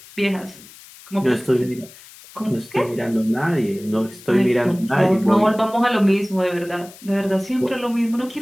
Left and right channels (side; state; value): left; noise; hiss, 20 dB below the sound